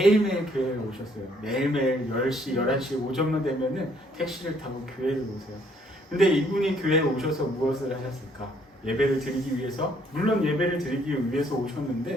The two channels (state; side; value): normal; both; correlation 0.66